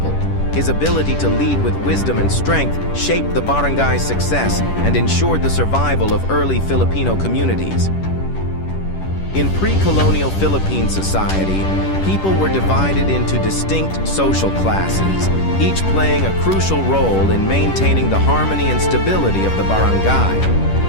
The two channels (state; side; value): late; right; 10 ms